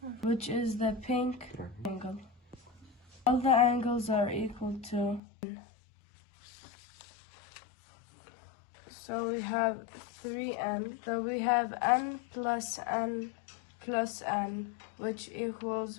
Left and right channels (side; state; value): right; drops out; at 5.2 s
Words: which is the pink angle. All the angles are equal to n. So we have 3n. So we have n plus n plus n, which equals